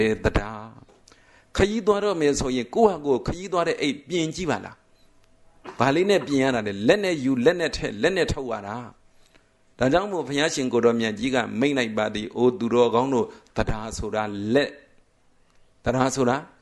ယ်တရားခရီးသွားတော့မယ်ဆိုရင်ကိုယ့်ဟာကိုယ်ခရီးသွားတဲ့အိတ်ပြင်ကြည့်ပါလားဘာလေးနဲ့ပြင်ရတာလဲလက်နဲ့ယူလက်နဲ့ထက်လက်နဲ့ထုတ်ရတာဒါကြောင့်မို့ဘုရားရှင်ကိုတော်မြတ်ကြီးကမိန့်လိုက်ပါသည်အိုသူတော်ကောင်းတို့တရားဆိုတာလက်တရားဆိုတာ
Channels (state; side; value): identical; both; correlation 1.00